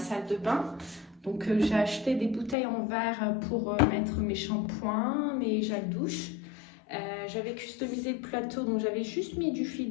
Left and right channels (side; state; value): right; drops out; at 2.6 s